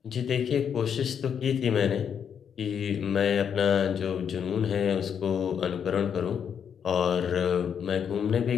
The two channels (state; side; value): quieter; right; 7.7 dB